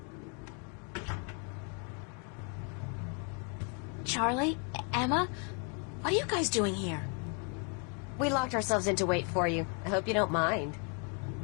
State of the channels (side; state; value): right; quieter; 36.9 dB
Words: Charlie? Emma? What are you guys doing here? We locked ourselves in to wait for you. I hope you don't mind.